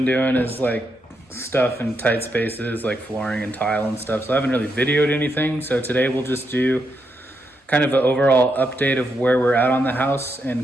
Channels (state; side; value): normal; both; correlation 0.81